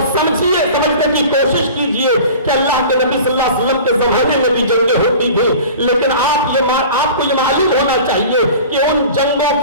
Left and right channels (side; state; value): both; inverted; correlation -0.40